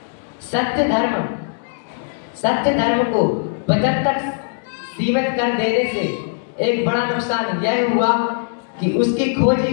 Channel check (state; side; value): silent; right; digital silence